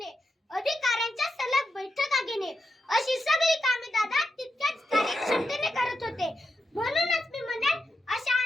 अधिकाऱ्यांच्या सलग बैठका घेणे, अशी सगळी कामे दादा तितक्याच कार्यक्षमतेने करत होते. म्हणूनच मी म्हणेन, अशा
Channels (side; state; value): both; normal; correlation 0.86